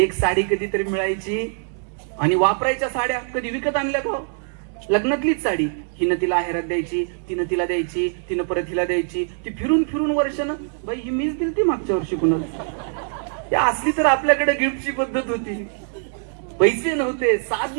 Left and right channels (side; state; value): left; silent; digital silence